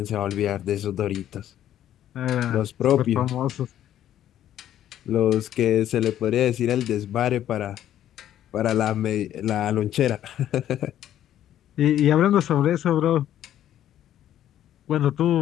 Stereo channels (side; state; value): right; quieter; 11.5 dB